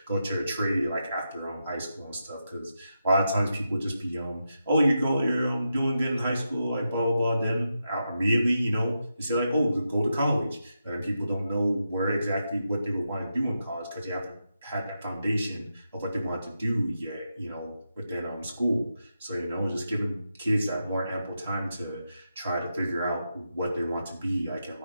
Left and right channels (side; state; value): both; inverted; correlation -0.87